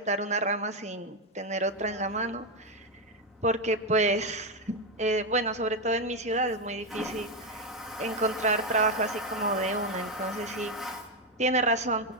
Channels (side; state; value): both; normal; correlation 0.06